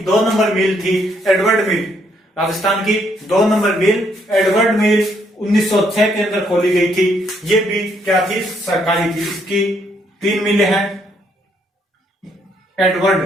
2 नंबर मिल थी एडवर्ड मिल। राजस्थान की 2 नंबर मिल एडवर्ड मिल 1906 के अंदर खोली गई थी। ये भी क्या थी, सरकारी थी। इसकी 3 मिलें हैं। एडवर्ड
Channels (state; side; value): normal; both; correlation 0.71